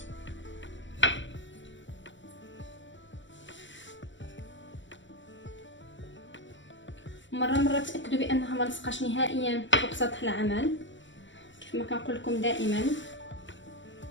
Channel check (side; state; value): right; late; 0.54 ms